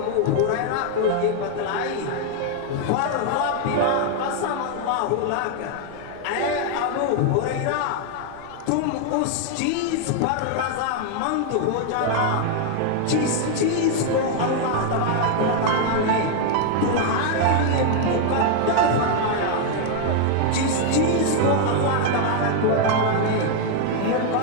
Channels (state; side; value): different; both; correlation 0.00